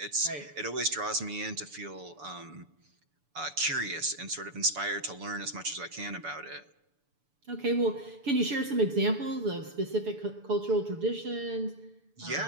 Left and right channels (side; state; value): left; late; 6.9 ms